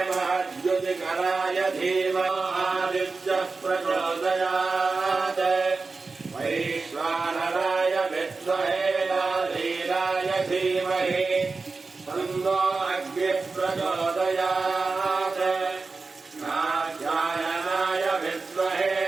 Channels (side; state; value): left; quieter; 4.1 dB